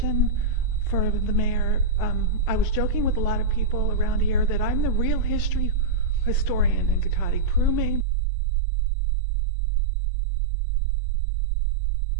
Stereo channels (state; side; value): drops out; left; at 8.1 s